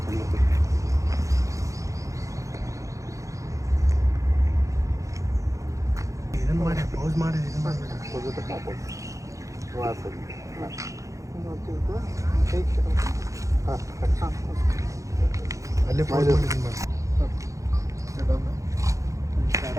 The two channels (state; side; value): late; left; 0.15 ms